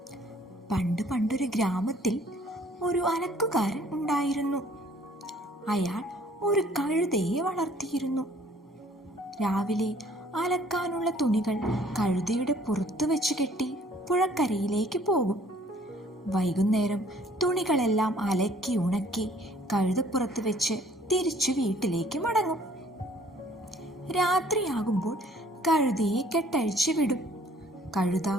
പണ്ടൊരു ഗ്രാമത്തിൽ ഒരു അലക്കുകാരൻ ഉണ്ടായിരുന്നു. അയാൾ ഒരു കഴുതയെ വളർത്തിയിരുന്നു. രാവിലെ അലക്കാനുള്ള തുണികൾ കഴുതയുടെ പുറത്തു വെച്ച് കെട്ടി പുഴക്കരയിലേക്ക് പോകും. വൈകുന്നേരം തുണികളെല്ലാം അലക്കി ഉണക്കി കഴുതപ്പുറത്ത് വെച്ച് തിരിച്ചു വീട്ടിലേക്ക് മടങ്ങും. രാത്രിയാകുമ്പോൾ കഴുതയെ കെട്ടഴിച്ചു വിടും. കഴുത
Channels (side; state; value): both; normal; correlation 0.58